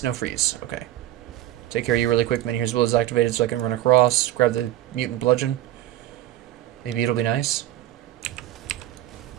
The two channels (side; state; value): left; quieter; 13.8 dB